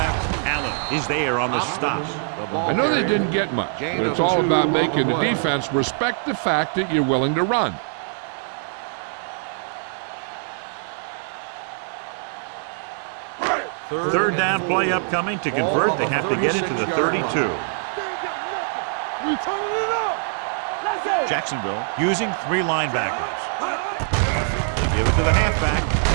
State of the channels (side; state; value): left; silent; digital silence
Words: Allen is there on the stop. I know they didn't get much, but it's all about making the defense respect the fact that you're willing to run. Third down play upcoming. To convert, they have to get it to the 32. Jacksonville using 3 linebackers. They give it to the halfback.